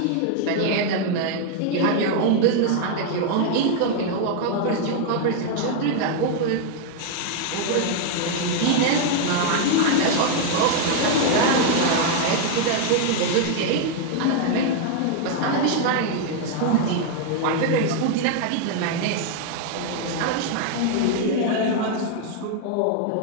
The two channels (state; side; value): different; both; correlation 0.00